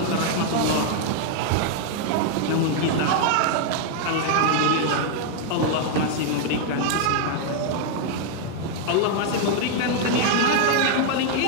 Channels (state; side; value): different; both; correlation 0.00